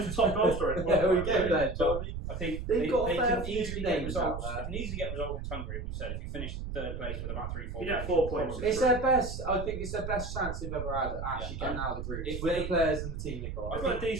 top goal scorer. There we go then, Johnny. I think They've they, got a they fair can few easily get names out results. there. They can easily get results against Hungary. We said if you finish third place with about 3-4 You get games, 4 you're points. probably It's through. their best. I think it's their best chance they've ever had at actually Yeah, getting out of the group if with they- the players and the team they got. I've got a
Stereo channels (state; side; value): noise; right; rumble, 6 dB below the sound